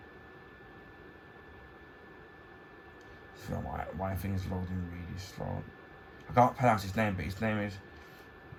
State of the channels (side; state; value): both; identical; correlation 1.00